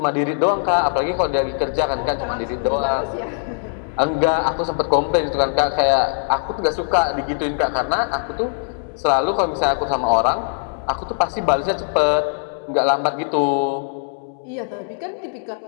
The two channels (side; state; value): right; silent; digital silence